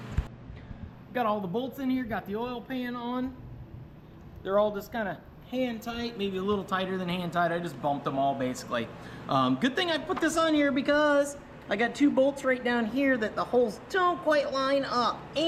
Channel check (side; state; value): both; identical; correlation 1.00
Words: Got all the bolts in here, got the oil pan on. They're all just kind of hand tight, maybe a little tighter than hand tight. I just bumped them all basically. Good thing I put this on here because I got 2 bolts right down here that the holes don't quite line up.